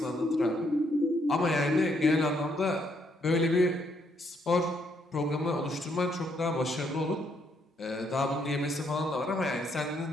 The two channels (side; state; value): both; normal; correlation 0.73